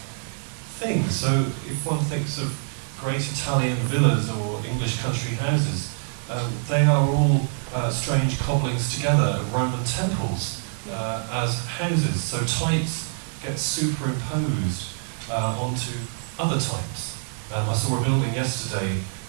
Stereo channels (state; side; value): silent; left; digital silence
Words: thing. So if one thinks of great Italian villas or English country houses, they are all strange cobblings together of Roman temples as houses. So types get superimposed onto other types. I saw a building yesterday,